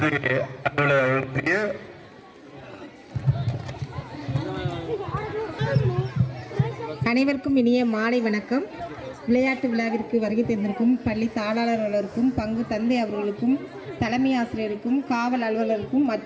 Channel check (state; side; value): identical; both; correlation 1.00